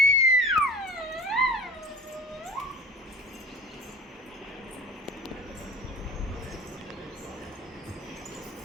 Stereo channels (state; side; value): normal; both; correlation 0.38